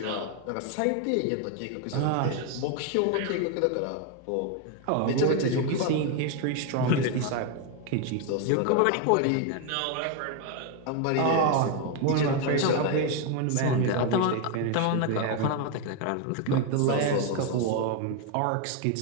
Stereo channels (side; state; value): both; different; correlation 0.01